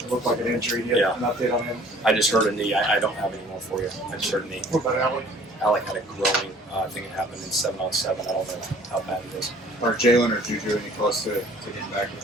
looked like an injury. Do you have an update on him? I just heard a knee. I don't have any more for you. I just heard a knee. What about Alec? Alec had a growing. I think it happened in 7-on-7. I don't know how bad it is. Are Jalen or Juju any close to getting back?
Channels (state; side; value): normal; both; correlation 0.53